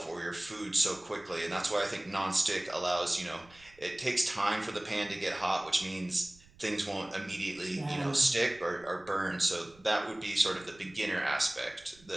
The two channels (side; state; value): right; noise; rumble, 27 dB below the sound